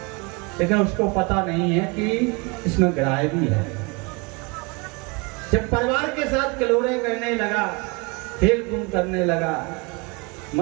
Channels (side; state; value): left; quieter; 28.8 dB